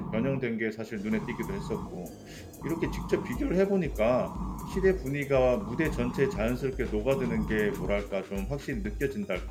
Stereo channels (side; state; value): both; identical; correlation 1.00